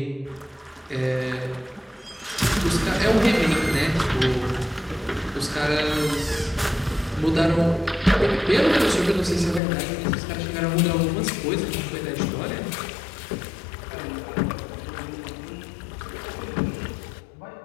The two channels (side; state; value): right; drops out; at 9.6 s